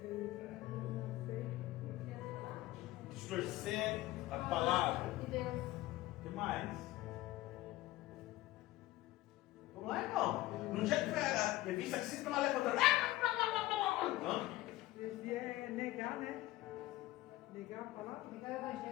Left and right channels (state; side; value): quieter; right; 17.3 dB